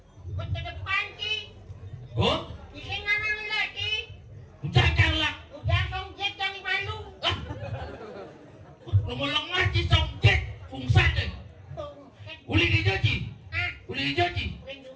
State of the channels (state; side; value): identical; both; correlation 1.00